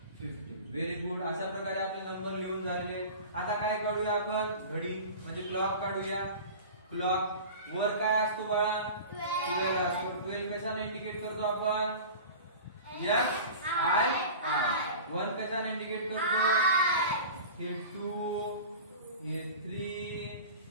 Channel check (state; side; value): inverted; both; correlation -0.36